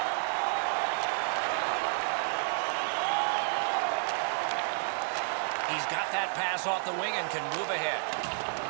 He's got that pass off the wing and can move ahead.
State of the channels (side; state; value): left; silent; digital silence